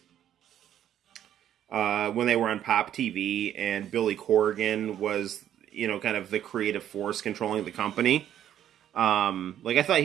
when they were on Pop TV, and Billy Corgan was, kind of the creative force controlling the company. Like I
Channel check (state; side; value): quieter; left; 10.8 dB